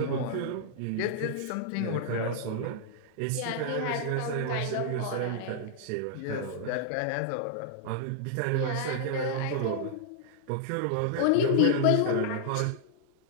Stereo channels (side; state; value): both; different; correlation -0.01